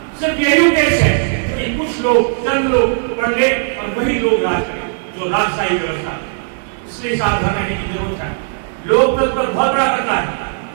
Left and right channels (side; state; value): left; silent; 68 dB below the other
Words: सिर्फ यही उद्देश्य है कि कुछ लोग, चंद लोग पढ़ ले और वही लोग राज करें, जो राजशाही व्यवस्था। इसलिए सावधान रहने की जरूरत है। लोकतंत्र पर बहुत बड़ा खतरा है।